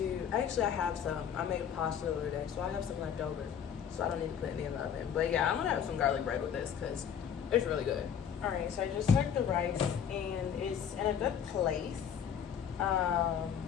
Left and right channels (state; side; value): quieter; right; 8.2 dB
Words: I have some. I made pasta the other day, so I have some left over. So I don't need to put any in the oven. But yeah, I'm gonna have some garlic bread with this because it's really good. All right, so I just took the rice and it's in a good place. Ooh,